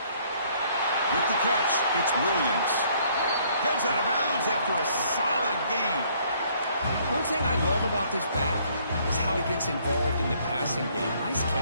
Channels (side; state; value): both; inverted; correlation -0.63